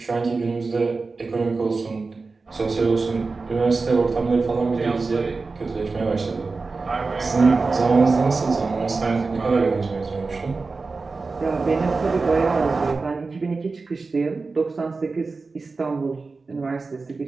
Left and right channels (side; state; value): left; quieter; 4.0 dB